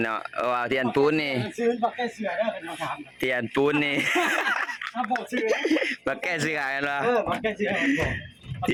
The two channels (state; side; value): identical; both; correlation 1.00